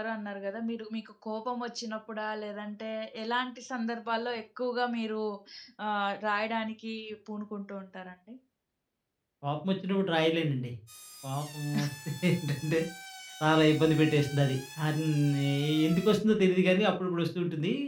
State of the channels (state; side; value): identical; both; correlation 1.00